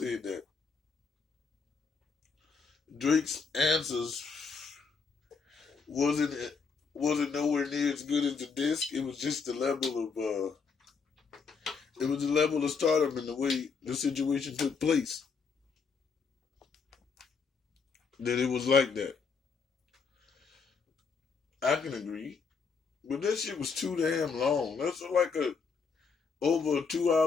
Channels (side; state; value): right; quieter; 5.2 dB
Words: that Drake's answers wasn't wasn't nowhere near as good as the disc. It was just the level of it was the level of stardom and the way the situation took place that it was like that. I can agree, but that shit was too damn long. That's like a over a 2